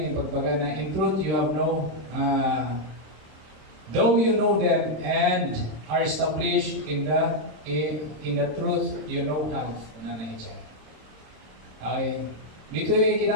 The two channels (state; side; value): late; left; 26 ms